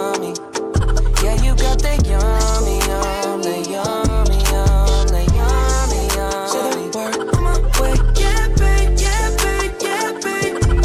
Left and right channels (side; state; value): both; identical; correlation 1.00